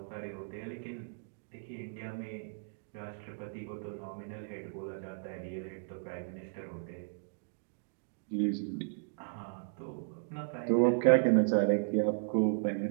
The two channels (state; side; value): silent; left; digital silence